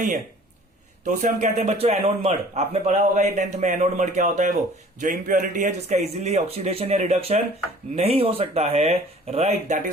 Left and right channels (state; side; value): normal; both; correlation 0.50